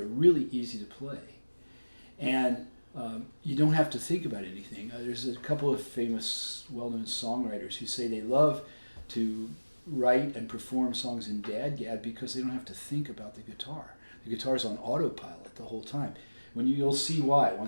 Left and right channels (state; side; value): inverted; both; correlation -1.00